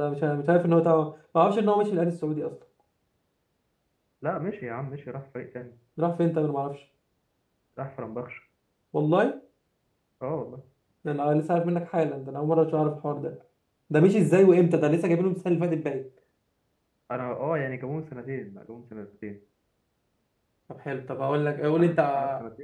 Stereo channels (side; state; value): both; identical; correlation 1.00